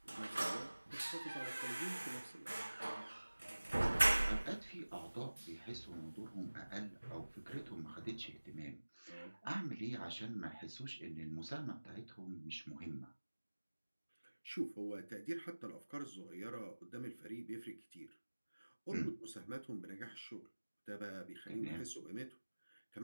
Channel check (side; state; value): both; inverted; correlation -1.00